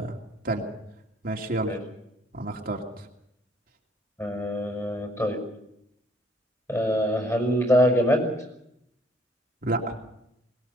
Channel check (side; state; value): both; normal; correlation 0.62